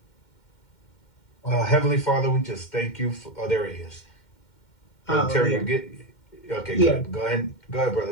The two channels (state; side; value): late; right; 2.1 ms